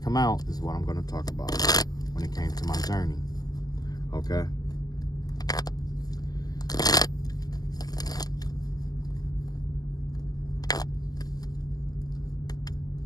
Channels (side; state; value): right; late; 0.18 ms